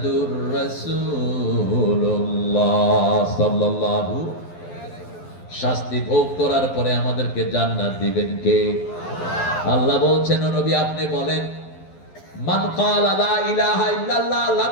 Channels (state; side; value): late; right; 12 ms